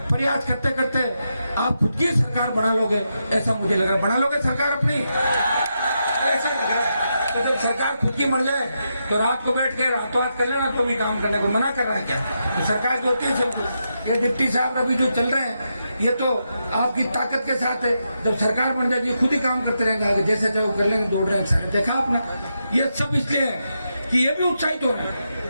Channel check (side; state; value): both; inverted; correlation -0.84